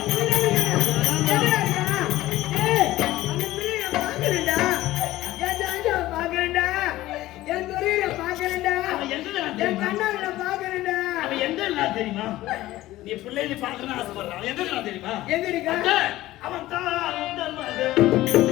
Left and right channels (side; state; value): right; quieter; 16.3 dB